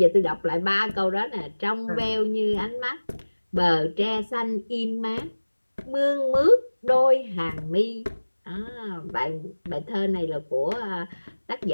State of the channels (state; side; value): inverted; both; correlation -1.00